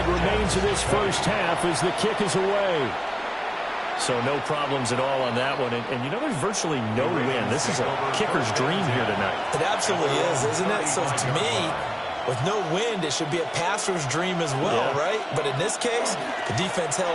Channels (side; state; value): both; identical; correlation 1.00